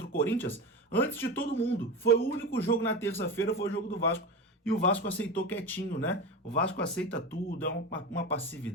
o Corinthians antes de todo mundo. Foi o único jogo na terça-feira, foi o jogo do Vasco. e o Vasco aceitou quietinho, né? O Vasco aceita tudo, é uma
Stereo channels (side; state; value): both; normal; correlation 0.24